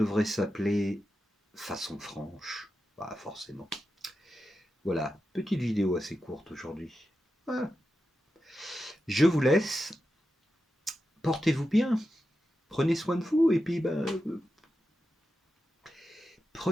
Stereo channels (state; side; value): normal; both; correlation 0.90